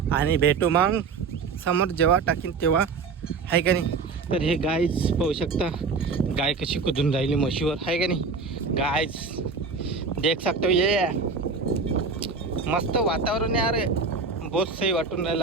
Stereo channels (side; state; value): left; quieter; 4.7 dB